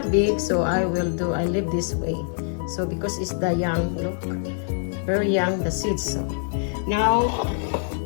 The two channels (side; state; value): right; silent; 62 dB below the other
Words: big, so I leave this way. So, because it's the young, look, very young, the seeds. So, now